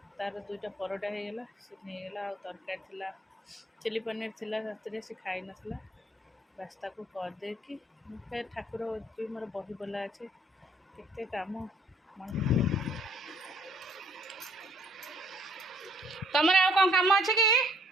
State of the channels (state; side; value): normal; both; correlation 0.63